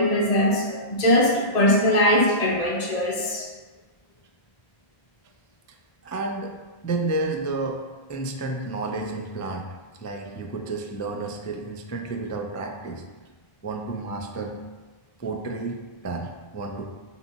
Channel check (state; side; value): late; right; 1.7 ms